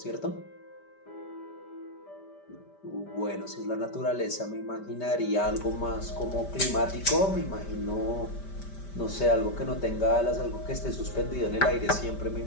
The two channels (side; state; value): right; late; 5.1 ms